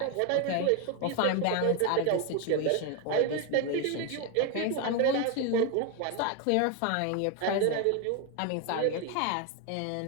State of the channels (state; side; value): different; both; correlation 0.01